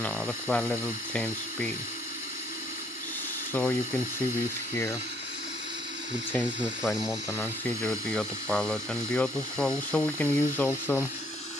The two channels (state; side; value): normal; both; correlation 0.66